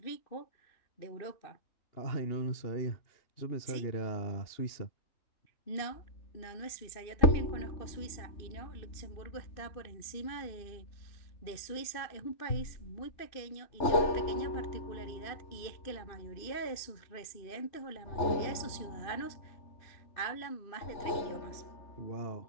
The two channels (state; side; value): late; right; 2.6 ms